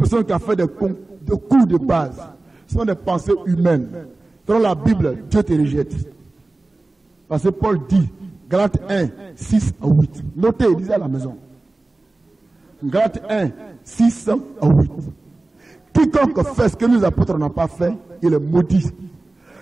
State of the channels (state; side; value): quieter; left; 3.1 dB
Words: qui a fait des cours de base sont des pensées humaines. Selon la Bible, Dieu te rejette. Parce que Paul dit, Galates 1, 6 à 8. Notez, lisez à la maison. Galates 1, 6 à 8. Quiconque fait ce que nous apôtres n'ont pas fait, il est maudit.